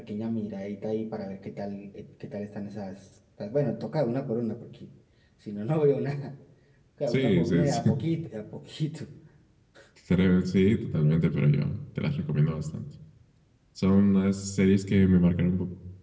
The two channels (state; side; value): identical; both; correlation 1.00